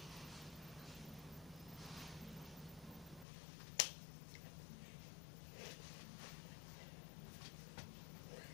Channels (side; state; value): right; drops out; at 3.2 s